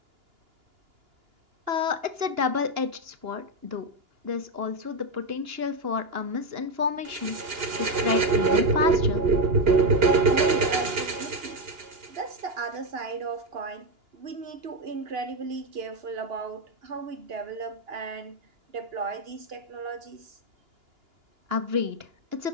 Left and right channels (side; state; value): left; late; 2.9 ms